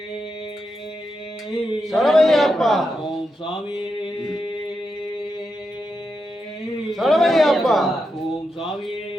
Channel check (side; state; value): both; normal; correlation 0.86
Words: சரவையப்பா ஓம் சாமியே சரவையப்பா ஓம் சாமியே